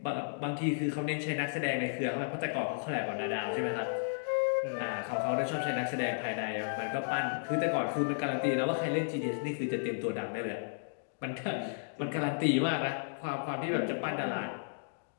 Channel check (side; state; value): right; silent; digital silence